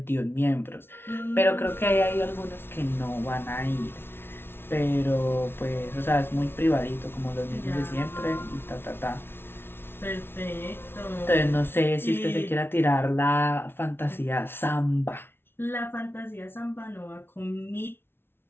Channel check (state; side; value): late; right; 0.11 ms